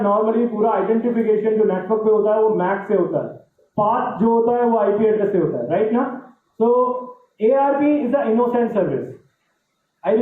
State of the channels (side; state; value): both; identical; correlation 1.00